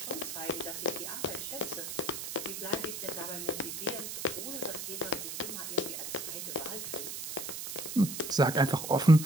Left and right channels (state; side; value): noise; right; hiss, 6 dB below the sound